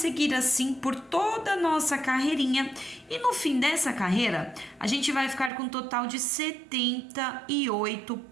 assim por toda a nossa carreirinha e no fim dessa carreira, a gente vai ficar com um total de 78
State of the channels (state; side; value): drops out; left; at 5.5 s